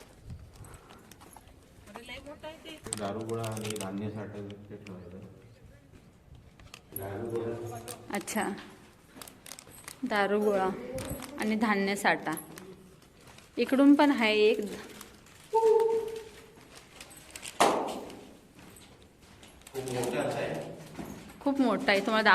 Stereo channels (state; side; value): identical; both; correlation 1.00